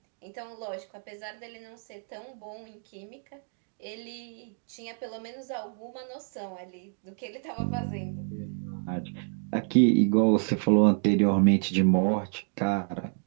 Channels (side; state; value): left; silent; 55 dB below the other